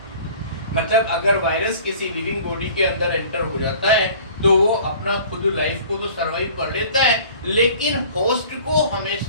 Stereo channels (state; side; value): inverted; both; correlation -0.48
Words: मतलब अगर वायरस किसी लिविंग बॉडी के अंदर एंटर हो जाता है तो वो अपना खुद लाइफ को तो सरवाइव कर लेता है, लेकिन होस्ट को